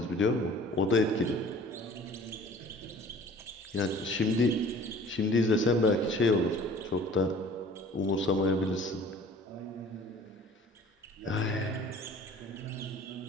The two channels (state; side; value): normal; both; correlation 0.48